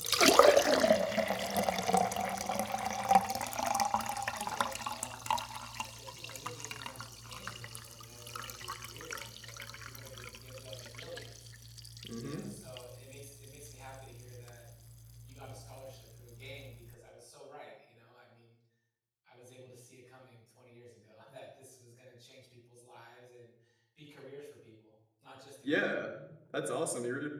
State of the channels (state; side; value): identical; both; correlation 1.00